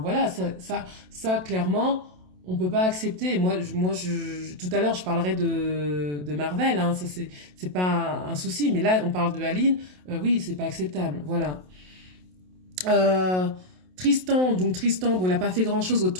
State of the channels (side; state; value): left; late; 27 ms